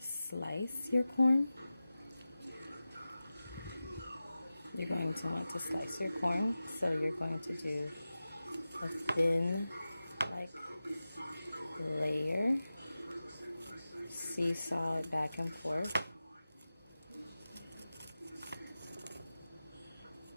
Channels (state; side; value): inverted; both; correlation -0.95